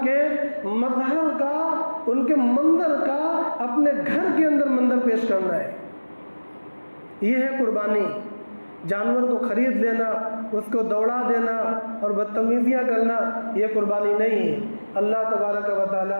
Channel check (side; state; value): both; inverted; correlation -1.00